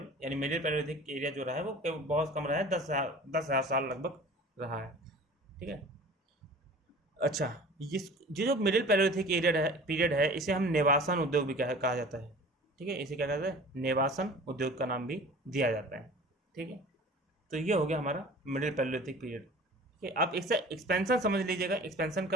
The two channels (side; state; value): both; normal; correlation 0.42